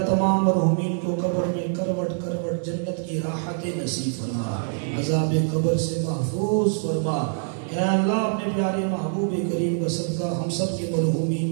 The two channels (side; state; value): left; silent; 60 dB below the other